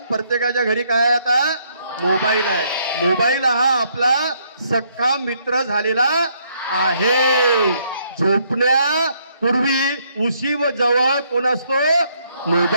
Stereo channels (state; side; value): inverted; both; correlation -0.70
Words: प्रत्येकाच्या घरी काय आहे आता? मोबाईल आहे. मोबाईल हा आपला सख्खा मित्र झालेला आहे. झोपण्यापूर्वी उशी व जवळ कोण असतो?